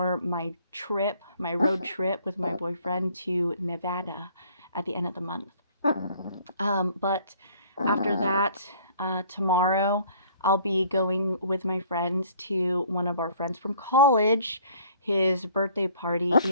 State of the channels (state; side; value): inverted; both; correlation -0.56